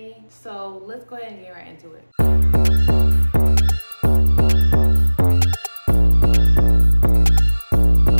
So let's go ahead and get right into it.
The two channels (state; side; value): inverted; both; correlation -1.00